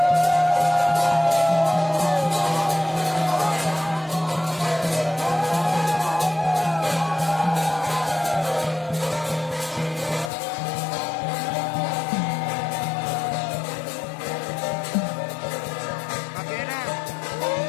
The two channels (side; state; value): right; drops out; at 10.3 s